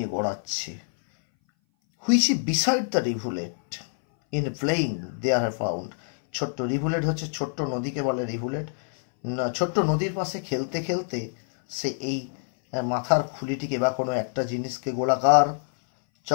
গড়াচ্ছে। Which beside the rivulet in playing there have found. ছোট্ট রিভুলেট হচ্ছে ছোট্ট নদীকে বলে রিভুলেট। ছোট্ট নদীর পাশে খেলতে খেলতে সে এই মাথার খুলিটিকে বা কোনো একটা জিনিসকে, গোলাকার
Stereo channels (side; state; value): right; silent; 59 dB below the other